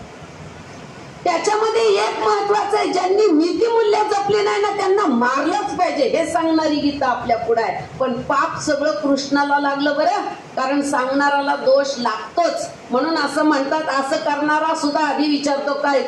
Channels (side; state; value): both; identical; correlation 1.00